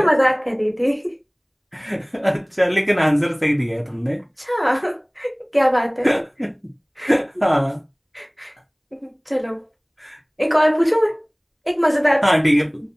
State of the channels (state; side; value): identical; both; correlation 1.00